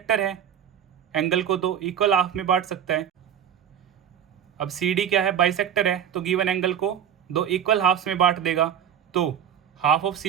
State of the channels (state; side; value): quieter; left; 9.2 dB